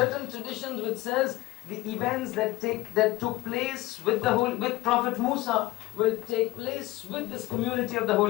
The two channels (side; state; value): right; quieter; 18.8 dB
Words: traditions which says the events that took place with Prophet Musa will take place with this community of the